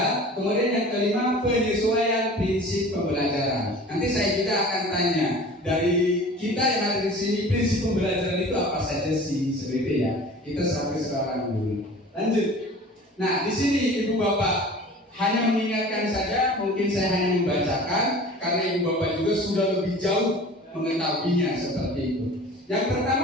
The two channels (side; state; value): both; normal; correlation 0.42